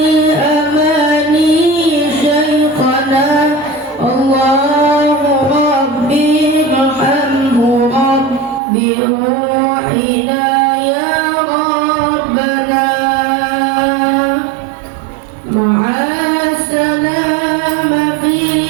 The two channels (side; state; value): left; drops out; at 8.6 s